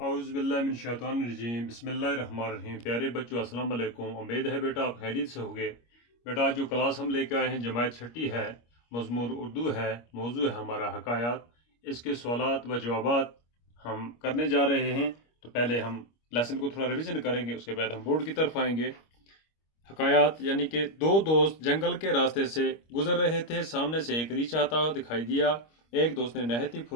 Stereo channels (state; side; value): late; right; 25 ms